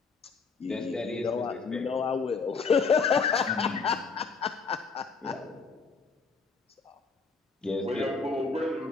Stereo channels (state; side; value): quieter; right; 4.9 dB